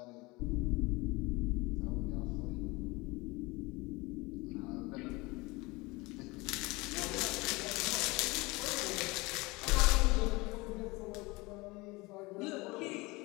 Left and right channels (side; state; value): right; quieter; 23.5 dB